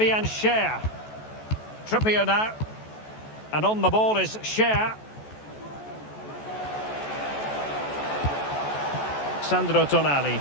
Schär. Trippier now. And on the ball is Schär. Sandro Tonali.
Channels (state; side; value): late; right; 14 ms